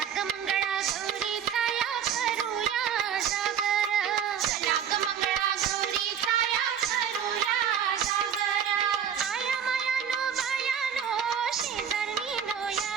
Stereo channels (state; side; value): quieter; left; 8.3 dB